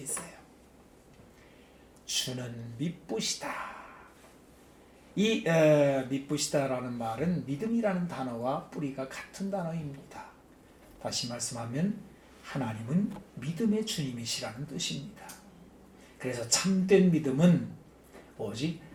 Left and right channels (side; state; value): both; identical; correlation 1.00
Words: 주는 미쁘시다. 이 미쁘시다라는 말은 믿음이라는 단어와 뿌리가 같은 단어입니다. 다시 말씀하면 하나님은 믿음의 주님이시라는 뜻입니다. 그래서 참된 믿음은 오직